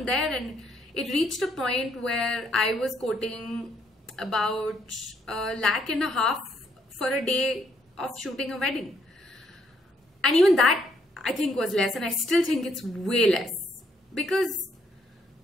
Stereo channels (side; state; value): both; normal; correlation 0.71